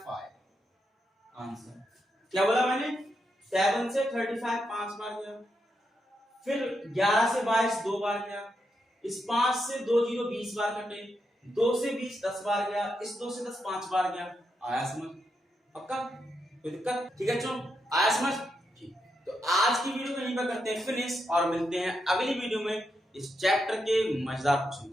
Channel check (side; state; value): both; normal; correlation 0.83